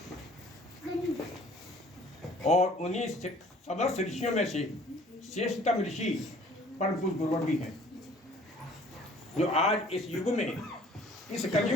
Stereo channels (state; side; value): normal; both; correlation 0.54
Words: और उन्हीं समस्त ऋषियों में से श्रेष्ठतम ऋषि परम पूज्य गुरुवर भी हैं, जो आज इस युग में, इस